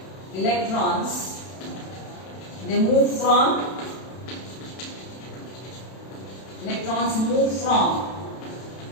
Electrons, they move from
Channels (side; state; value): right; late; 31 ms